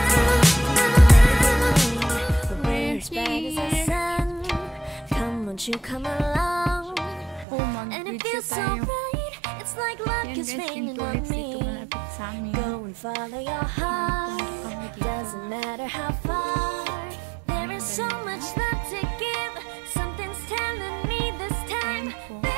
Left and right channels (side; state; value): left; drops out; at 7.5 s